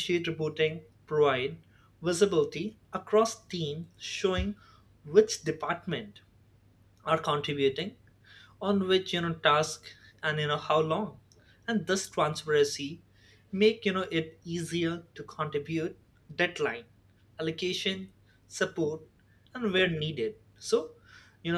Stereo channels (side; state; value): both; identical; correlation 1.00